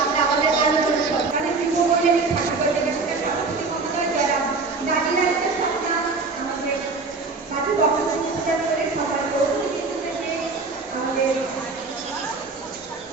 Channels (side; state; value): left; quieter; 4.0 dB